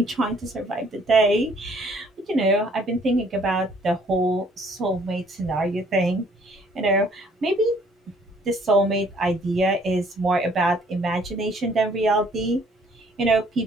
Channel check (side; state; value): both; normal; correlation 0.60